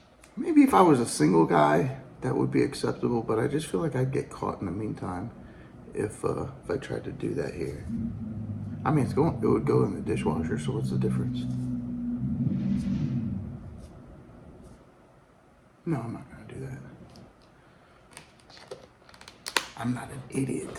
Maybe if I was a single guy, that would be acceptable, but I just feel like I'd get caught in the meantime if I tried to do that here. I mean, it would go in the dishwasher, so what's the difference? No, I'm not gonna do that. I'm not an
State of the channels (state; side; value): identical; both; correlation 1.00